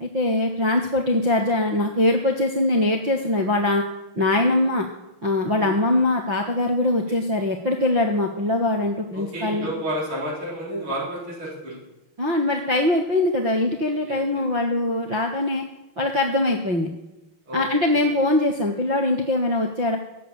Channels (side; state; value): left; late; 5.9 ms